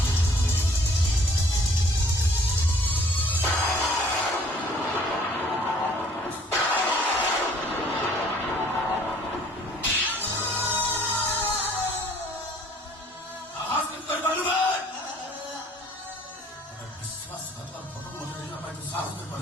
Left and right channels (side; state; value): both; normal; correlation 0.57